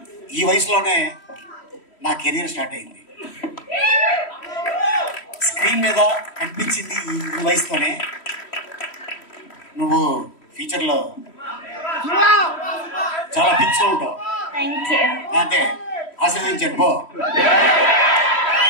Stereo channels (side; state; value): right; late; 3.1 ms